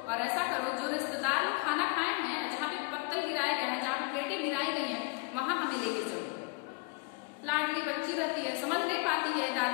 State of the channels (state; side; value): quieter; right; 29.2 dB